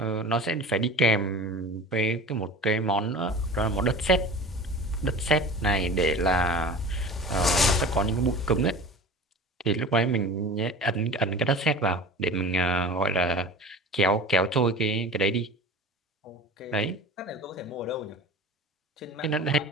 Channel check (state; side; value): normal; both; correlation 0.37